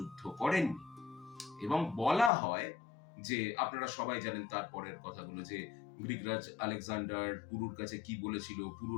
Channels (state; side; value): drops out; right; at 2.3 s